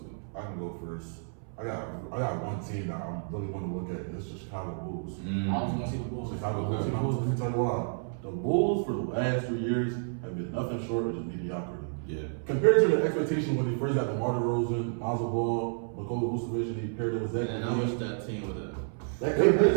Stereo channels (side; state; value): left; silent; 58 dB below the other